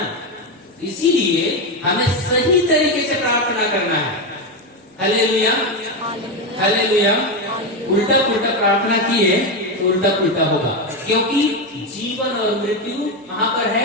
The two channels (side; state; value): both; normal; correlation 0.11